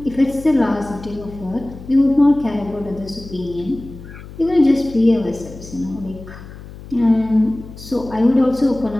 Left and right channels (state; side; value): noise; left; hum, 16 dB below the sound